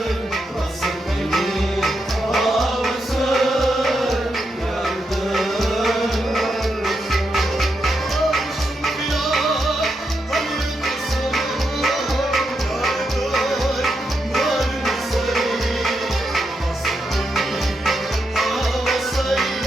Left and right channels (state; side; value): normal; both; correlation 0.83